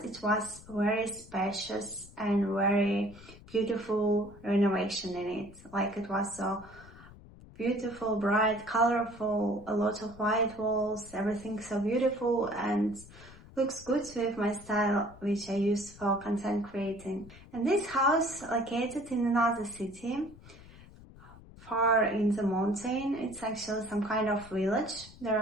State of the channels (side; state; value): left; noise; rumble, 20 dB below the sound